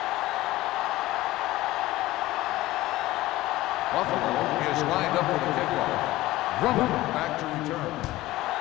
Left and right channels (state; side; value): quieter; right; 17.3 dB